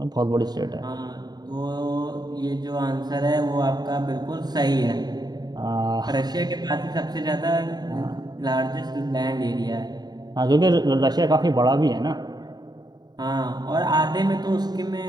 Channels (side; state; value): left; late; 0.20 ms